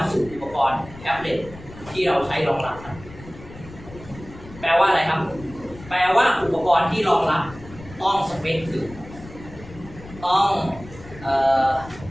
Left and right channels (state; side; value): noise; left; rumble, 17 dB below the sound